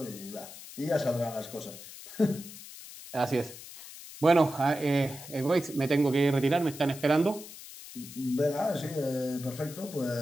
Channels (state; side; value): noise; left; hiss, 15 dB below the sound